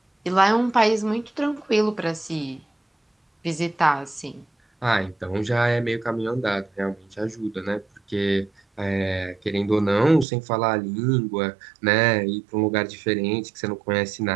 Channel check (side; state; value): left; drops out; at 10.2 s